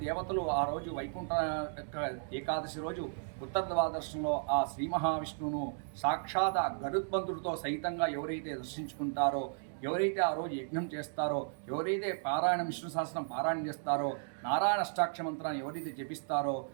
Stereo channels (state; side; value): silent; left; digital silence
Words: దేవతలు ఆ రోజు వైకుంఠ ఏకాదశి రోజు ఉత్తర ద్వాదశంలో ఆ శ్రీ మహావిష్ణువును సాక్షాత్ గరుత్మంతుడితో సహితంగా ఎవరైతే దర్శించుకుంటారో, ఎవరైతే ఆ రోజు యజ్ఞం చేస్తారో, ఎవరైతే పారాయణం విష్ణు సహస్రం పారాయణం చేస్తారో, నారాయణ అష్టాక్షర మంత్రాన్ని ఎవరైతే జపిస్తారో